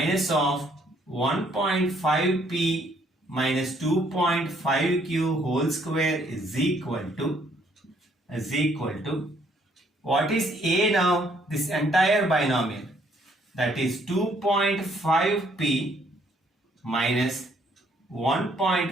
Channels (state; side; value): normal; both; correlation 0.66